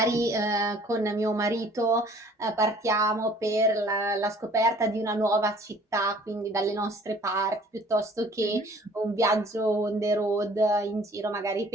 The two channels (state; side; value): normal; both; correlation 0.53